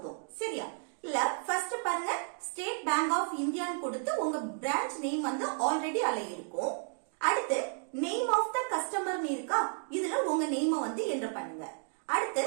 சரியா? இல்ல ஃபர்ஸ்ட் பாருங்க, ஸ்டேட் பேங்க் ஆஃப் இந்தியான்னு கொடுத்து உங்க பிரான்ச் நேம் வந்து ஆல்ரெடி அதுல இருக்கும். அடுத்து நேம் ஆஃப் த கஸ்டமர்னு இருக்கா, இதுல உங்க நேம் வந்து என்டர் பண்ணுங்க. அடுத்து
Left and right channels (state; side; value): silent; left; 56 dB below the other